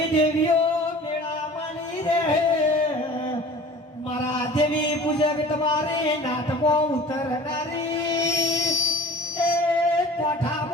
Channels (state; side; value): normal; both; correlation 0.43